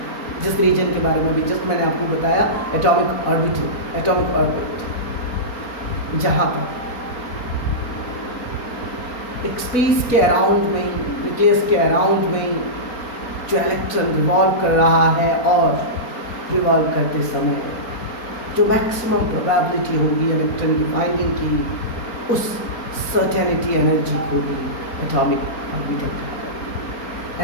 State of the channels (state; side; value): late; right; 4.3 ms